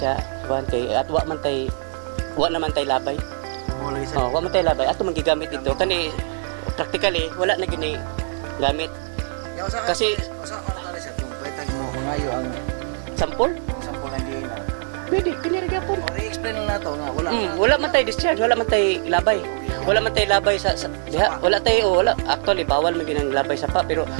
kuan kay at wa naman tay labay. Wa man tay labay. Ato man gigamit ito kani practically wala na gini gamit. Kasi usa ano tali sa kung pwede mo ngayo ang sample lang din. pwede kini ra gyapon. I-explain lang nato nga wala man tay discharge, wala man tay labay. Wala man tay labay sa diha, wala actually bawal man ginang labay sa pa pero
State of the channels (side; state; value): left; silent; digital silence